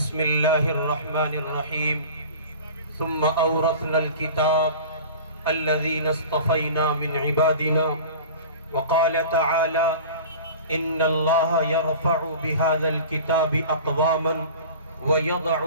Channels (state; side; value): inverted; both; correlation -0.39